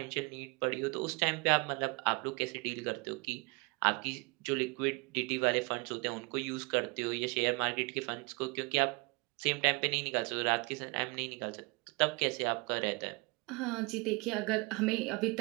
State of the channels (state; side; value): quieter; left; 28.1 dB